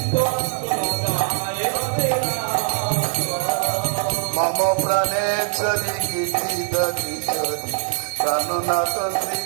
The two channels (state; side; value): silent; left; digital silence